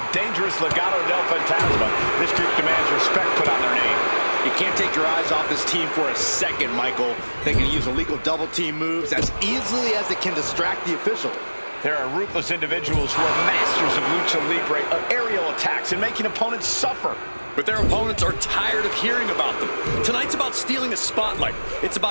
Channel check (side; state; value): both; inverted; correlation -1.00